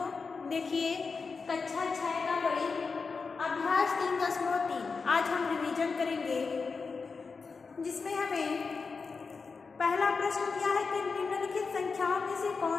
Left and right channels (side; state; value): right; quieter; 4.8 dB